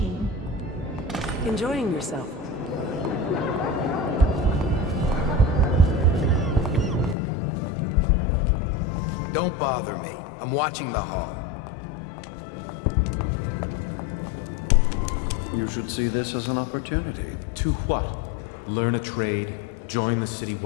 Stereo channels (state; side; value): drops out; right; at 7.2 s